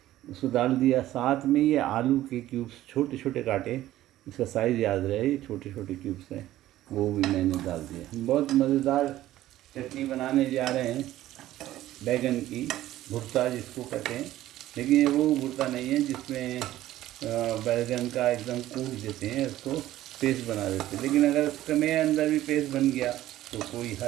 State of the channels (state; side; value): quieter; left; 14.4 dB